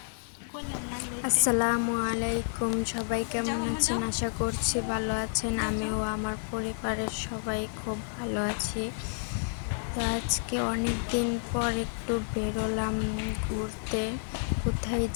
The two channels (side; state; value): right; silent; 58 dB below the other